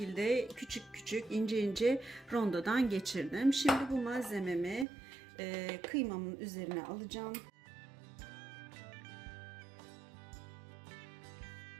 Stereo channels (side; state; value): left; drops out; at 4.9 s